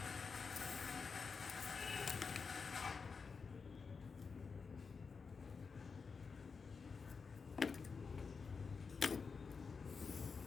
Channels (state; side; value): quieter; right; 5.2 dB